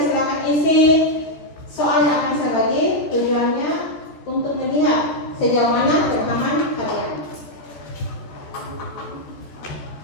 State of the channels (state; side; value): late; right; 14 ms